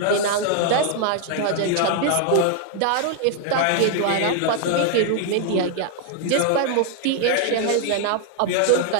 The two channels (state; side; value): different; both; correlation 0.00